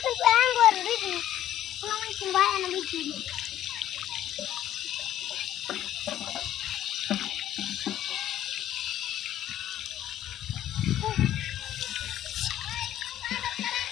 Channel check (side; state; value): right; quieter; 12.1 dB